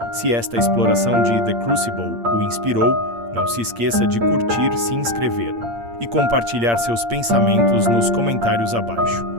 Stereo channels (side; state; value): left; late; 8.7 ms